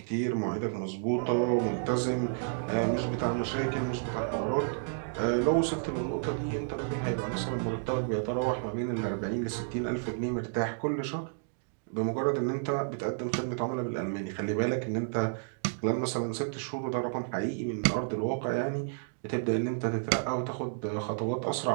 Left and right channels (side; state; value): left; silent; digital silence